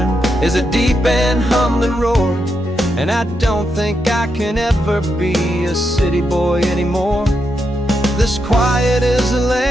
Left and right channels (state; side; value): normal; both; correlation 0.83